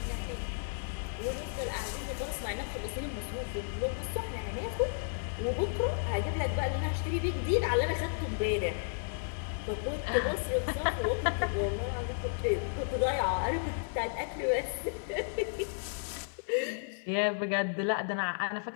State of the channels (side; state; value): right; silent; digital silence